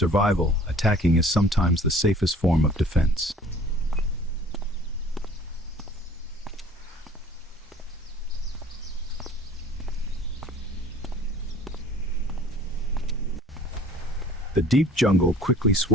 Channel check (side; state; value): both; normal; correlation 0.50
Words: attacking is sometimes the safest form of defense. The deep jungle quickly